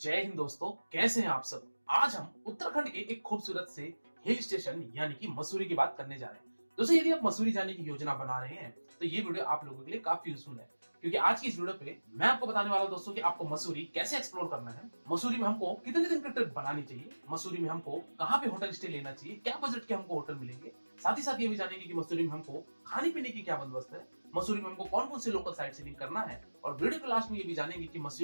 हिंद दोस्तों, कैसे हैं आप सब। आज हम उत्तराखंड के एक खूबसूरत से हिल स्टेशन यानी कि मसूरी की बात करने जा रहे हैं। दोस्तों, यदि आप मसूरी जाने की योजना बना रहे हैं तो ये वीडियो आप लोगों के लिए काफी यूजफुल है, क्योंकि आज की इस वीडियो पे मैं आपको बताने वाला हूं दोस्तों कि आपको मसूरी कैसे एक्सप्लोर करना है, मसूरी में हमको कितने दिन की ट्रिप बनानी चाहिए, मसूरी में हमको कहाँ पे होटल स्टे लेना चाहिए, क्या बजट के हमको होटल मिलेंगे। साथ ही साथ ये भी जानेंगे कि मसूरी में हमको खाने पीने की क्या बंदोबस्त है, मसूरी में हमको कौन कौन से लोकल साइट सीइंग करना है, और वीडियो के लास्ट में ये भी जानेंगे कि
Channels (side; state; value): both; inverted; correlation -1.00